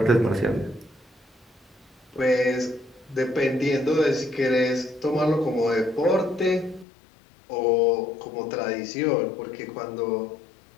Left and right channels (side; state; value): right; drops out; at 6.9 s